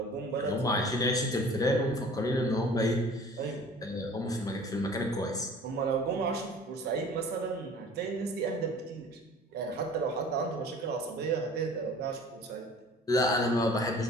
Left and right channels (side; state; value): both; normal; correlation 0.46